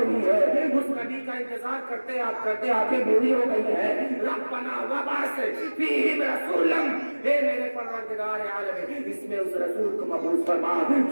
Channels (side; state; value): both; inverted; correlation -1.00